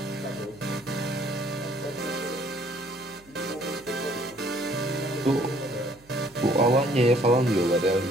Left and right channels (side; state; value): right; noise; hum, 27 dB below the sound